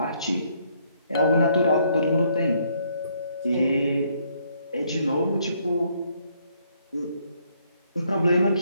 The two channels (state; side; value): inverted; both; correlation -0.69